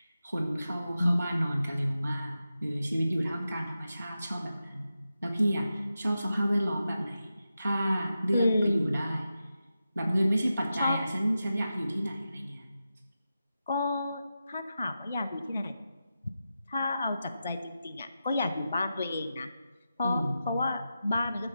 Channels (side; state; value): both; inverted; correlation -0.90